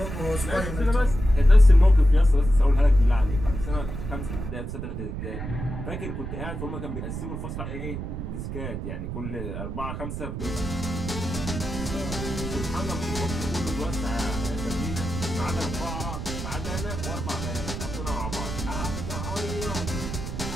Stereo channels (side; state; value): right; noise; rumble, 6 dB below the sound